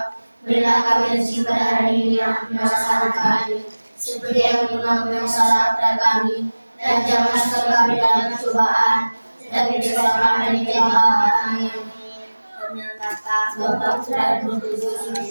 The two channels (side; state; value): both; inverted; correlation -1.00